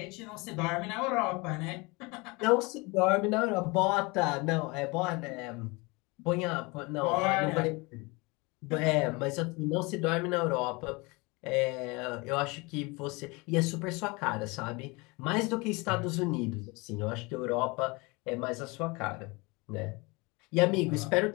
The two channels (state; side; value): quieter; right; 26.3 dB